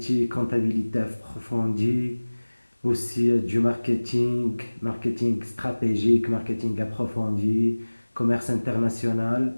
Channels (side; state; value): both; inverted; correlation -1.00